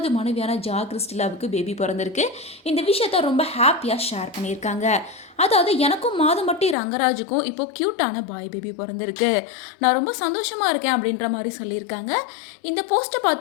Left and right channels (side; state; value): right; drops out; at 6.8 s